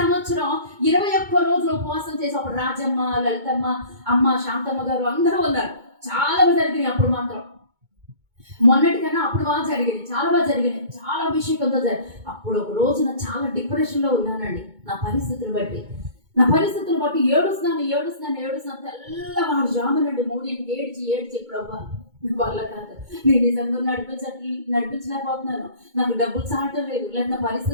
21 రోజులు ఉపవాసం చేసి అప్పుడు రాజమ్మ, లలితమ్మ, అమ్మ శాంతమ్మ గారు అందరూ ఉన్నారు. చాలా బాగా జరిగినాయి. అప్పుడు మాత్రం మొన్నటికన్నా అప్పుడు బాగా జరిగినాయి, చాలా బాగా జరిగినాయి, చాలా అభిషేకంతో అప్పుడు ఒక రోజున చాలా డిప్రెషన్లో ఉన్నానండి. నా పరిస్థితులు బట్టి ఏడుస్తున్నాను. తెల్లవారు జామునండి 3ంటికి ఏడ్చి ప్రభా వల్ల కాదు, నేను నిజంగా నడిపించలేకపోతున్నాను, నాకు డబ్బులు చాలటం లేదు, లేదా నా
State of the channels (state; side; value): late; left; 2.2 ms